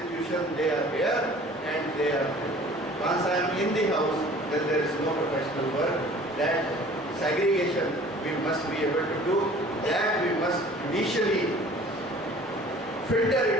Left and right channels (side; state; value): both; normal; correlation 0.48